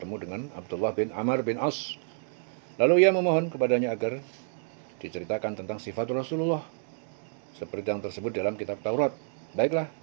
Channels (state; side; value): silent; left; digital silence